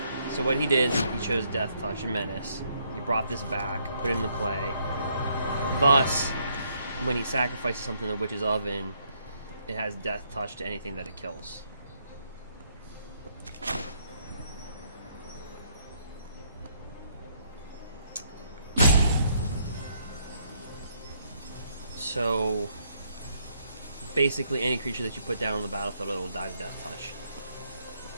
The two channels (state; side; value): inverted; both; correlation -0.71